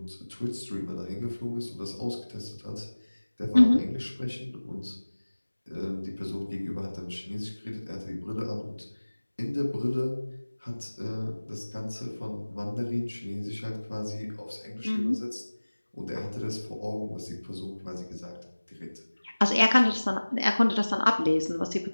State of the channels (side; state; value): both; inverted; correlation -1.00